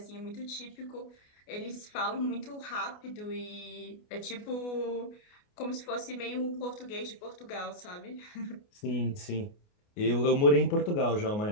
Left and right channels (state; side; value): late; right; 29 ms